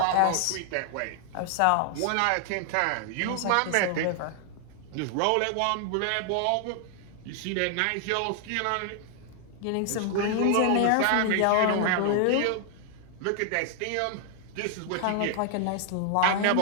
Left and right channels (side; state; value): both; different; correlation 0.00